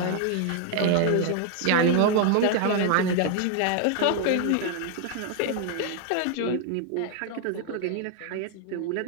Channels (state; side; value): different; both; correlation 0.00